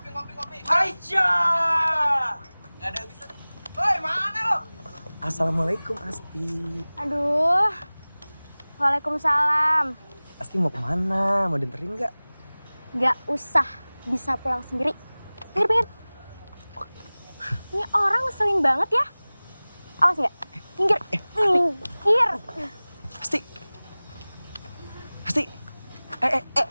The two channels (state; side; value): inverted; both; correlation -1.00